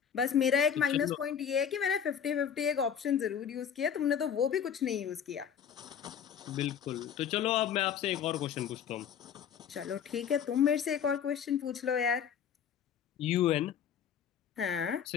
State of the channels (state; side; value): quieter; right; 8.3 dB